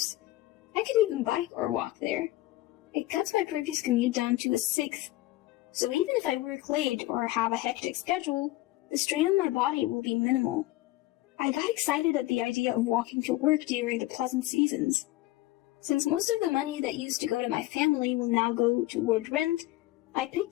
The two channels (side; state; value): right; quieter; 17.4 dB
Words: I could even bike or walk there. It cuts my previous commute down to a 1/6, so even if I work late or have a hectic schedule, the strain on my body will be minimal. I got excited at the idea of walking to work during the pleasant seasons. Since most of the money that used to go to my family will now go toward rent, I